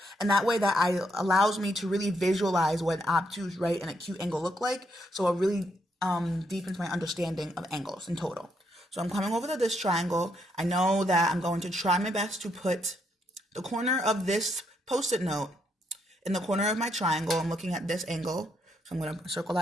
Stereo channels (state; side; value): normal; both; correlation 0.76